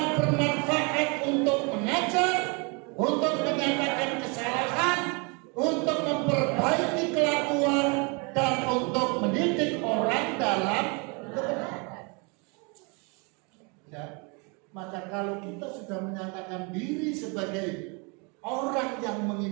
bermanfaat untuk mengajar, untuk menyatakan kesalahan, untuk memperbaiki kelakuan, dan untuk mendidik orang dalam kebenaran. Ya, maka kalau kita sudah menyatakan diri sebagai orang yang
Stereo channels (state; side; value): quieter; left; 31.9 dB